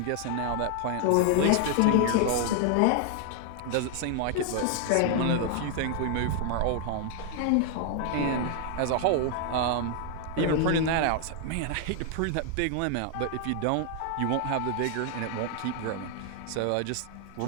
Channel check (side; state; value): both; different; correlation 0.00